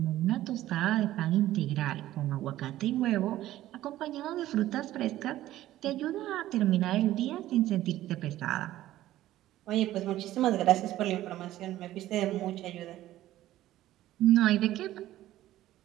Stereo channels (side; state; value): left; quieter; 14.4 dB